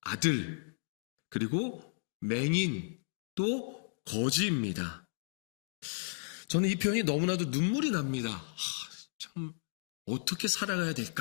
아들, 그리고 맹인, 또 거지입니다. 저는 이 표현이 너무나도 눈물이 납니다. 참 어떻게 살아가야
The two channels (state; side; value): silent; right; digital silence